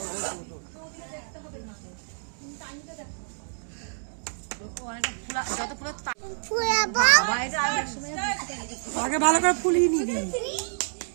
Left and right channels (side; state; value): left; silent; digital silence